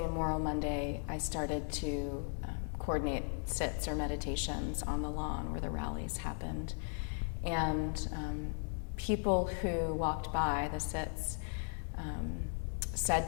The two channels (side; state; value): right; silent; 53 dB below the other